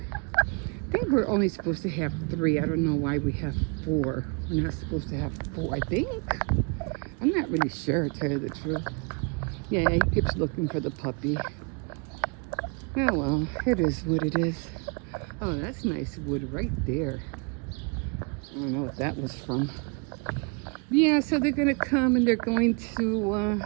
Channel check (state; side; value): quieter; left; 34.5 dB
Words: think we're only supposed to have 3. I don't know why we have 4. We're not supposed to have 4, I think. I'm not really sure, to tell you the truth. Yeah, he keeps looking for the puppy. Oh, well, it is what it is. Oh, that's nice wood right there. I don't know what that was from. Yeah, so they're going to come and they're going to,